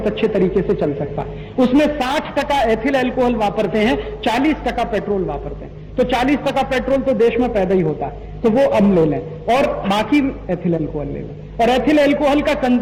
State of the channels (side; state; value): both; identical; correlation 1.00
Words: अच्छे तरीके से चल सकता है। उसमें 60% एथिल एल्कोहल वापरते हैं, 40% पेट्रोल वापरते हैं। तो 40% पेट्रोल तो देश में पैदा ही होता है, तो वो अब ले लें, और बाकी एथिल एल्कोहल ले लें। और एथिल एल्कोहल का